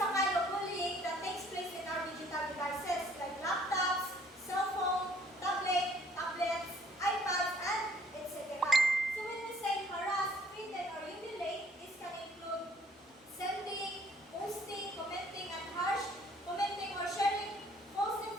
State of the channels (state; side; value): normal; both; correlation 0.60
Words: a kind of bullying that takes place in our digital devices like laptops, cell phone, tablets, iPads, and etc. So when we say harass, threaten, or humiliate, this can include sending, posting, commenting or sharing false